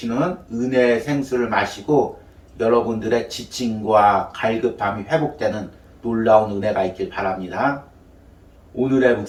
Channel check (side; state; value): both; identical; correlation 1.00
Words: 은혜의 생수를 마시고 여러분들의 지침과 갈급함이 회복되는 놀라운 은혜가 있길 바랍니다. 오늘의